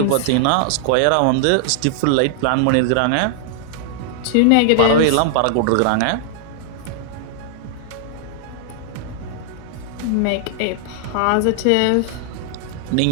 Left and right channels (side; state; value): both; different; correlation -0.01